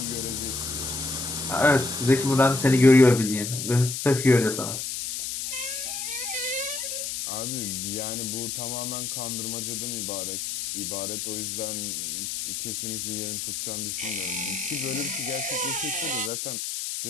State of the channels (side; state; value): left; noise; hiss, 4 dB below the sound